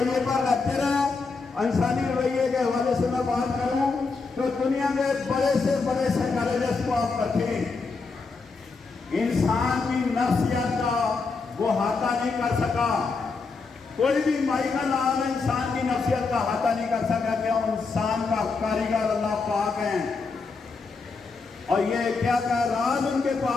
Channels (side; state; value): right; quieter; 4.4 dB